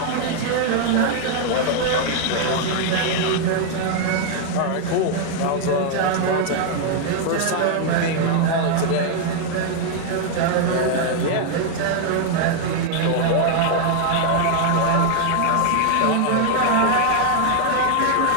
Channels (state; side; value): different; both; correlation 0.00